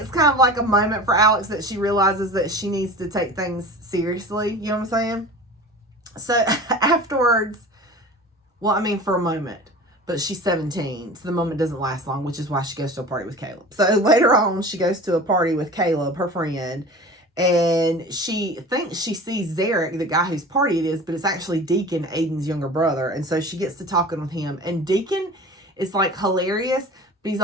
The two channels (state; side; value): normal; both; correlation 0.37